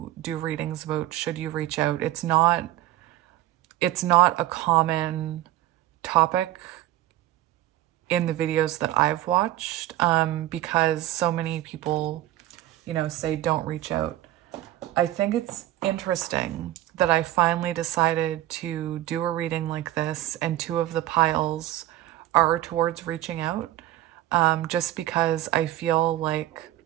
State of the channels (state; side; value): quieter; left; 14.8 dB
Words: do readings about should you reach out. It's not a common topic in the videos that I've watched, because so many people, you know, say don't reach out. I think it's interesting that I finally decided to do a reading like this, and two of the piles are towards reaching out, just because I feel like